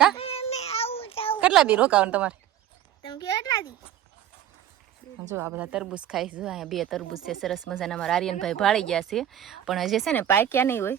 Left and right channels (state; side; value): quieter; left; 11.1 dB